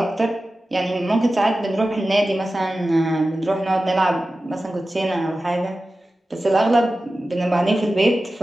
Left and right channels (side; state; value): both; normal; correlation 0.94